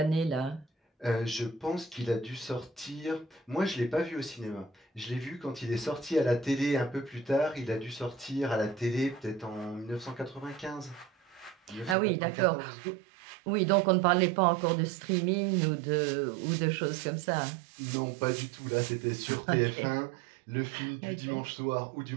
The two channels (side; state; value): left; drops out; at 12.0 s